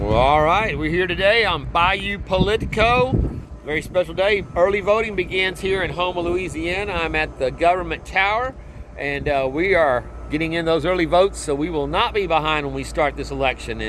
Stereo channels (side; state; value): both; identical; correlation 1.00